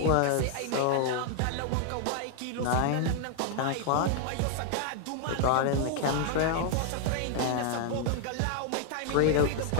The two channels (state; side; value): different; both; correlation 0.00